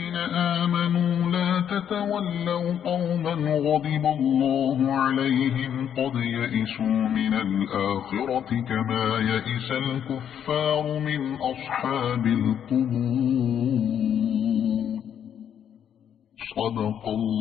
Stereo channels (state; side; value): quieter; right; 9.1 dB